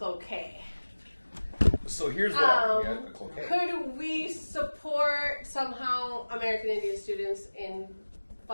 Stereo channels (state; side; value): inverted; both; correlation -1.00